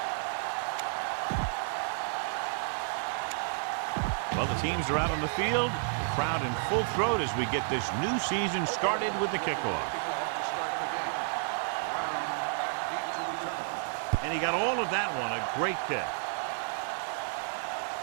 Well, the teams are out on the field. The crowd in full throat as we get this new season started with the kickoff. And he got all of that one. A great kick.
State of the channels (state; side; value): silent; left; digital silence